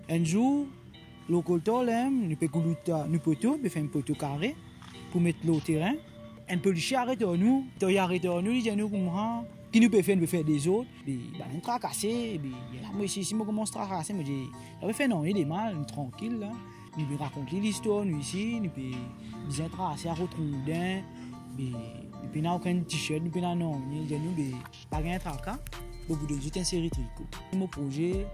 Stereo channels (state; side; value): identical; both; correlation 1.00